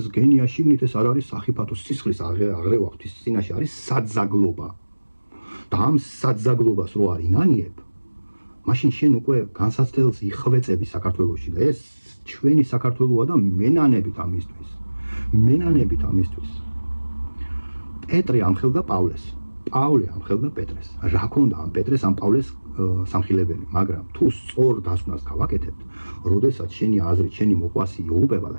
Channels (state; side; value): inverted; both; correlation -1.00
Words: გენია შიგნით ეს არ არის სახიფათო სისხლის აღრევა ღვთის წინაშე არის საძაგლობა. და ამ საძაგლობას რო არ ინანიებ, მაშინ შენ უკვე განსაცდელს იხვეწები საქართველოში და ეს ჩვენი საქართველოა და მენანებით ამისთვის. პეტრე ამხელდა პავლეს. პავლე ამხელდა პეტრეს. რა ქონდა ამ პეტრეს ამ პავლეს სამხილებელი, მაგრამ თუ სწორ დასკვნას გავაკეთებთ, როდესაც შენი აზრით შენი მოყვასი იუღუპება და